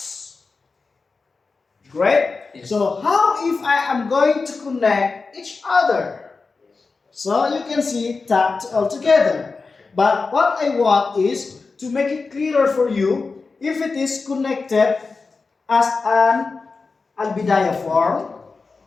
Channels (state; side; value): quieter; right; 4.3 dB